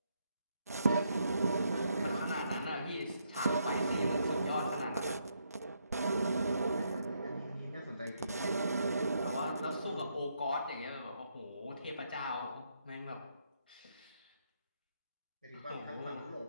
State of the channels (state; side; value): inverted; both; correlation -0.76